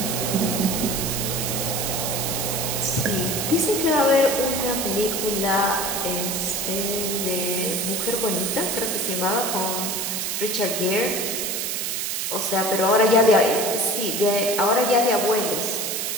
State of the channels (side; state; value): right; noise; hiss, 1 dB below the sound